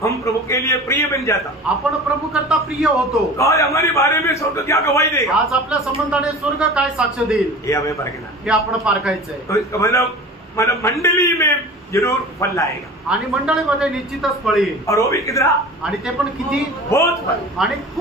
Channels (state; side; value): normal; both; correlation 0.37